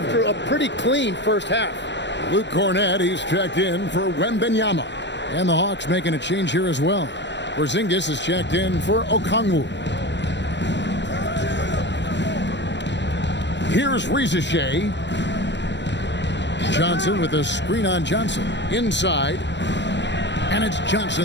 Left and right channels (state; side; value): late; right; 0.52 ms